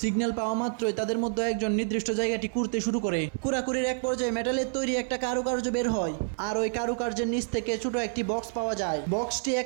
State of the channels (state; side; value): silent; left; 59 dB below the other